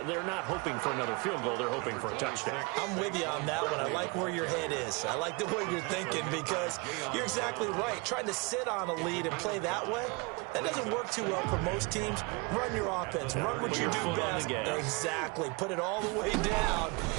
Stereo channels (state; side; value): quieter; left; 28.9 dB